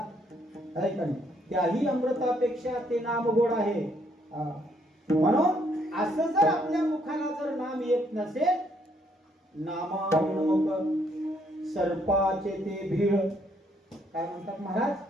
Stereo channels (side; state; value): both; normal; correlation 0.70